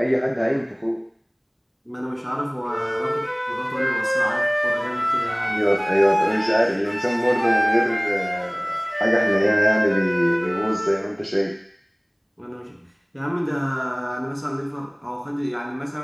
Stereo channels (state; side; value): identical; both; correlation 1.00